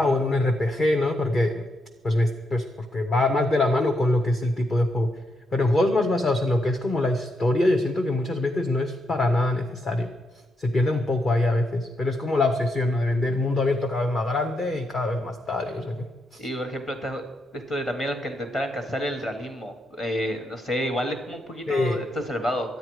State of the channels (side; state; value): both; normal; correlation 0.81